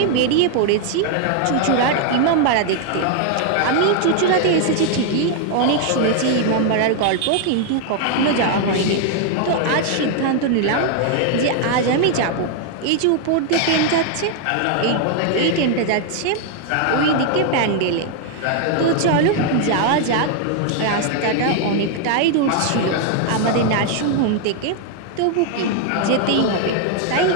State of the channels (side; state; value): both; different; correlation 0.00